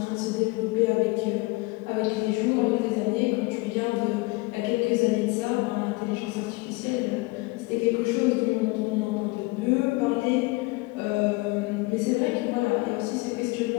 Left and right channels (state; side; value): quieter; right; 24.2 dB